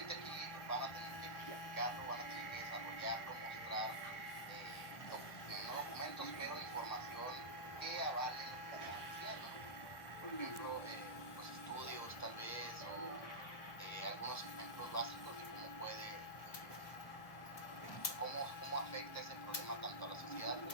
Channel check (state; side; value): late; right; 1.3 ms